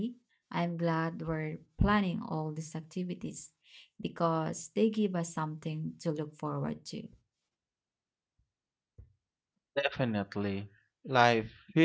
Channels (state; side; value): identical; both; correlation 1.00